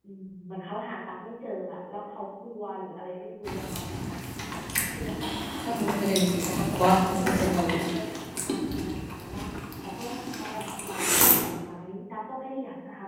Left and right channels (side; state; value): both; identical; correlation 1.00